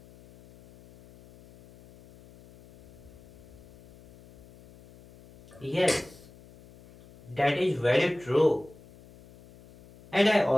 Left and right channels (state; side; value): noise; left; hum, 23 dB below the sound